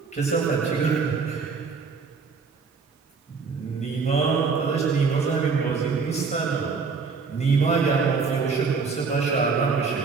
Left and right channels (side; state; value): left; quieter; 5.0 dB